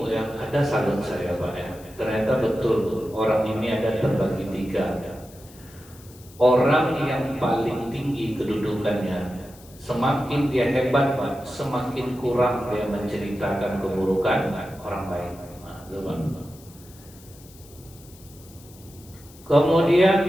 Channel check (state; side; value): noise; left; hiss, 23 dB below the sound